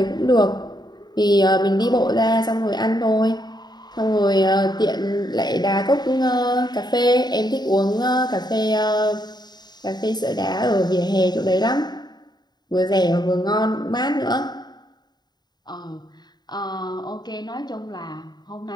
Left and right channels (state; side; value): late; right; 0.20 ms